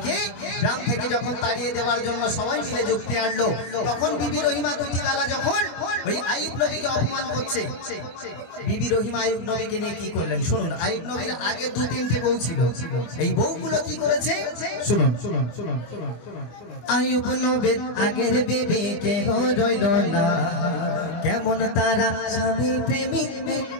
গ্রাম থেকে যখন তাড়িয়ে দেওয়ার জন্য সবাই মিলে যুক্তি আনলো, তখন বিবি রহিমা দুটি বেলা যখন ওই আইয়ুব নবীকে অপমান করছে, বিবি রহিমা আইয়ুব নবীকে নিয়ে কি করলেন শুনুন। আইয়ুব নবীর আগে দু তিনটে বউ ছিল, এই বউগুলো কি করেছে শুনুন। আইয়ুব নবীর আগের বিবি কেহ রইল না, কেমন তারা স্বামী প্রেমী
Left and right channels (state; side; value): late; right; 24 ms